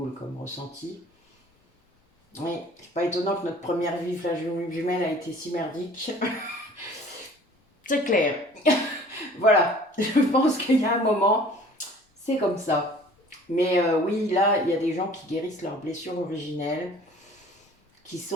comme ressenti. Oui, c'est pas étonnant que notre première vie flamme jumelle a été si merdique. C'est clair. Voilà, je pense qu'il y a un moment, c'est comme ça. Mais oui, là, il y a des gens qui guérissent leurs blessures originelles, qui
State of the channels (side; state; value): both; normal; correlation 0.49